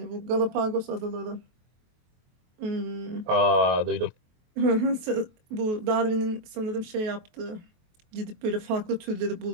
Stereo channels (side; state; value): left; late; 23 ms